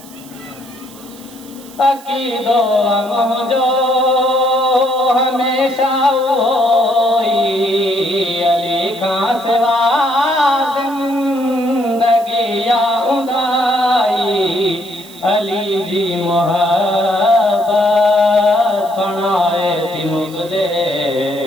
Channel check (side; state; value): right; noise; hiss, 21 dB below the sound